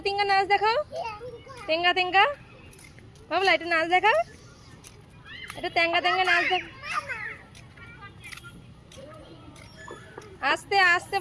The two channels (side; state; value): both; identical; correlation 1.00